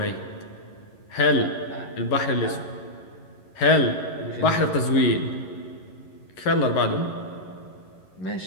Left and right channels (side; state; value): right; late; 11 ms